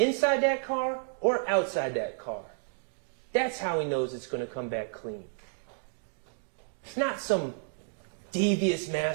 that car or outside that car. That's how he knows it's going to come back clean. It's not some devious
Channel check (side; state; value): left; silent; digital silence